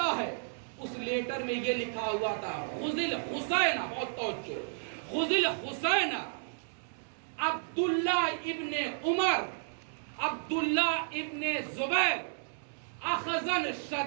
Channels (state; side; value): silent; left; digital silence